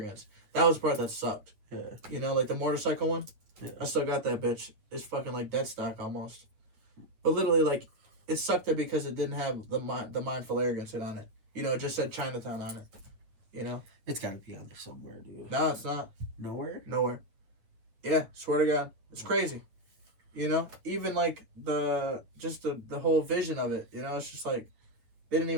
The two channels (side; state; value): left; late; 9.1 ms